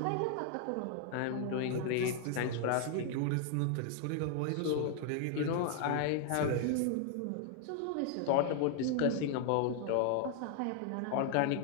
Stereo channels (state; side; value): different; both; correlation 0.00